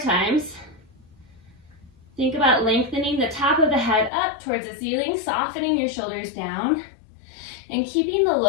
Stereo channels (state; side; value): drops out; right; at 4.1 s